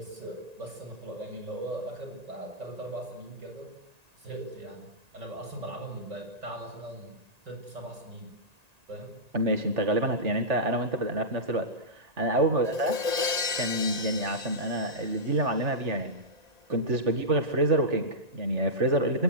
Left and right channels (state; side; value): late; left; 1.8 ms